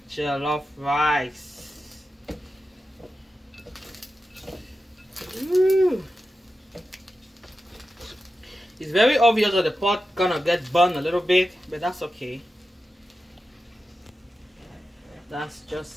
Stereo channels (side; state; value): both; normal; correlation 0.91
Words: jollof rice. Ooh. It's very obvious that the pot gonna get burned a little bit, but that's okay. That's